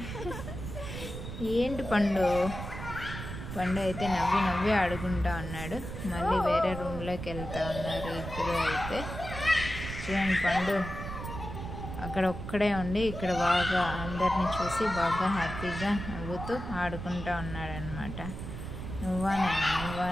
ఏంటి పండు అయితే నవ్వి ఆడుకుంటా ఉన్నాడు. మళ్ళీ వేరే రూమ్లోకి వెళ్తూ ఉన్నారు ఇద్దరు. అయితే చూడండి, పండు అక్కడ ఒక్కడే ఉండి ఇక్కడ బాగా అందరినీ చూసి బాగా హ్యాపీగా నవ్వుతూ ఆడుకుంటూ ఉన్నాడనమాట. నువ్వా నేను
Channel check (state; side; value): noise; right; rumble, 8 dB below the sound